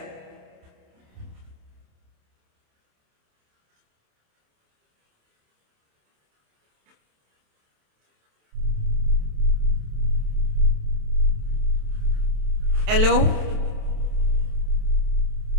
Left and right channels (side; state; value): left; late; 27 ms